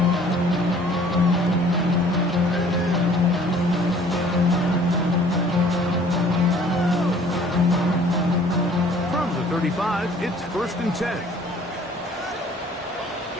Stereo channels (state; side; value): normal; both; correlation 0.54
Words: From the 35, it's 1st and 10.